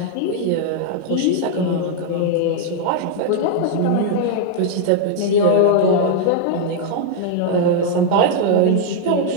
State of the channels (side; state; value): both; different; correlation -0.01